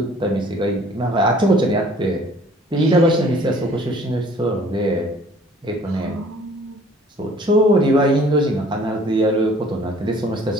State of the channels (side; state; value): both; normal; correlation 0.54